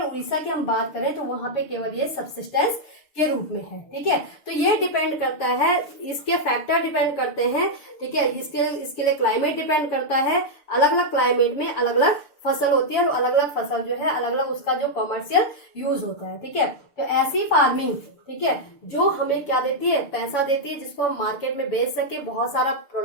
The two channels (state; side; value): late; right; 6.7 ms